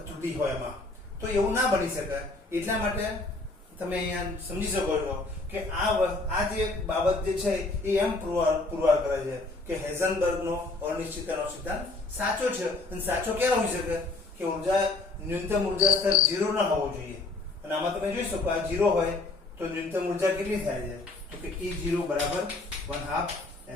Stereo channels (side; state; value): right; quieter; 3.2 dB